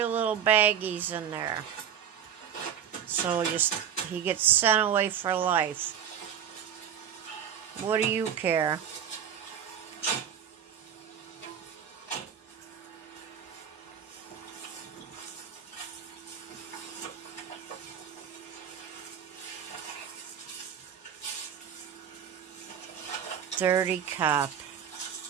little baggies in there. So he gets sent away for life. What do you care? Dirty cop.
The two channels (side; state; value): left; quieter; 8.7 dB